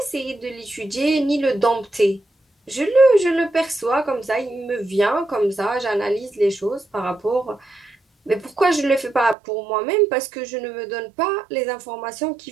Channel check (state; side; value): drops out; left; at 9.3 s